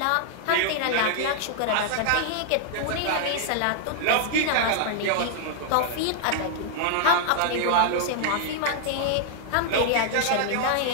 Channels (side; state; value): both; different; correlation -0.01